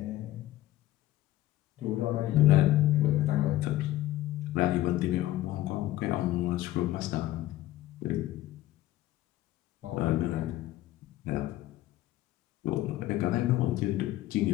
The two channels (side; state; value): right; quieter; 15.2 dB